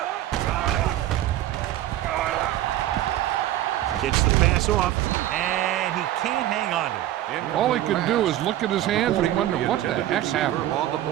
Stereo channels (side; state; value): left; quieter; 13.7 dB